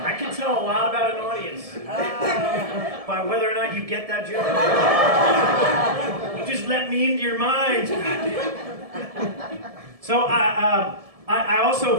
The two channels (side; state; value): left; late; 1.7 ms